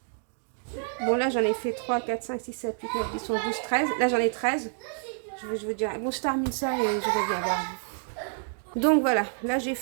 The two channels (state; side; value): silent; left; 59 dB below the other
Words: Bon, là, j'en ai fait 3, 4, 5, 6, 7, 8, 9, ils sont 12, 13. Là, j'en ai 13. Je veux dire, bon, je termine ça et je reviens vers vous. Donc, voilà. Là, j'ai